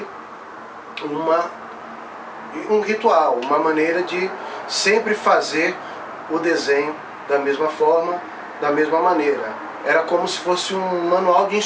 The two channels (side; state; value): both; identical; correlation 1.00